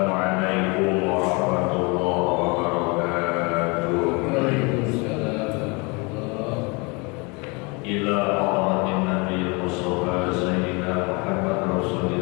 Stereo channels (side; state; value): right; quieter; 29.2 dB